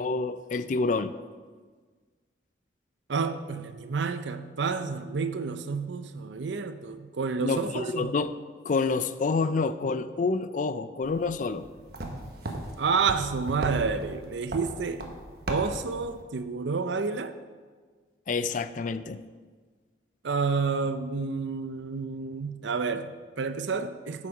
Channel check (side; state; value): both; normal; correlation 0.20